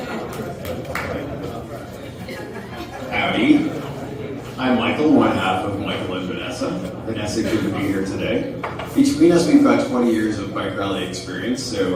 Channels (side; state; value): both; identical; correlation 1.00